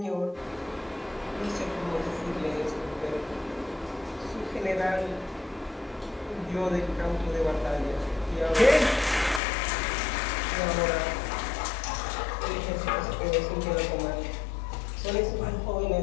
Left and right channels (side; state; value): right; drops out; at 9.4 s